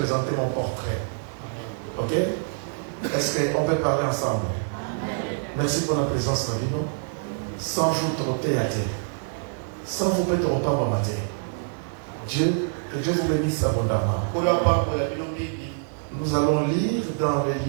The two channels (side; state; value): left; silent; digital silence